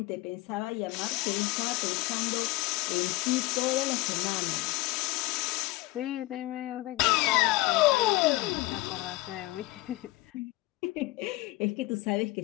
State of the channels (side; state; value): right; quieter; 19.7 dB